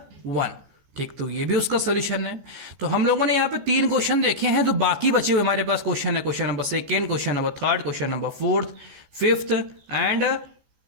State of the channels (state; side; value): late; left; 14 ms